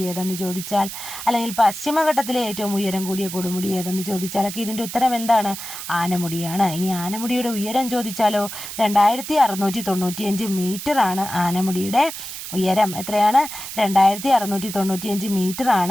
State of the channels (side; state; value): right; noise; hiss, 9 dB below the sound